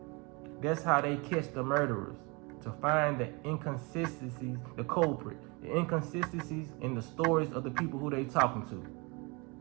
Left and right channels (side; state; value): left; quieter; 28.8 dB